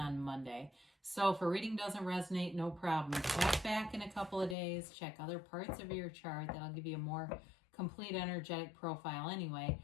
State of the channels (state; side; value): drops out; right; at 4.5 s